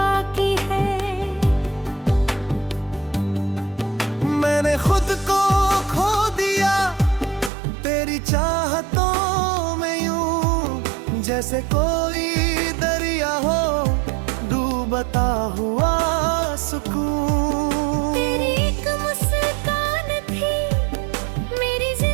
है। मैंने खुद को खो दिया तेरी चाहतों में यूं, जैसे कोई दरिया हो डूबता हुआ सुकून। तेरी एक मुस्कान थी मेरी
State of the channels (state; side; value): drops out; left; at 7.5 s